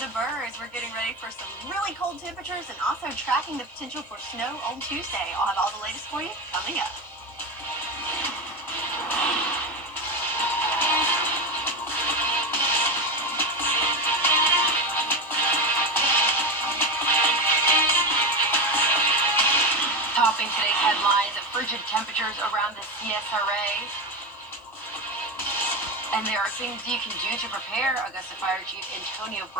birds. We're getting ready for some really cold temperatures and also tracking the potential for snow on Tuesday. I'll have all the latest for you coming up. Topping today's headlines, frigid temperatures around the CSRA. And there are things you can do to prepare. Augusta Fire Chief Antonio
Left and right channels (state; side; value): normal; both; correlation 0.17